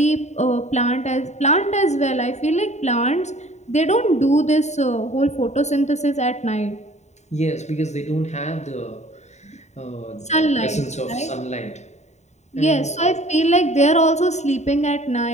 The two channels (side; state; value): right; late; 0.33 ms